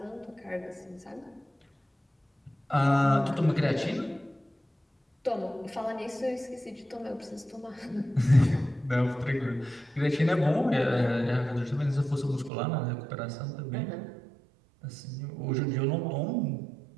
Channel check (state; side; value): drops out; left; at 12.5 s